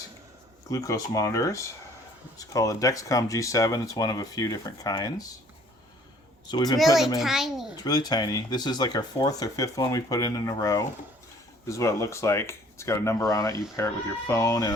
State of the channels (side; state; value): both; normal; correlation 0.56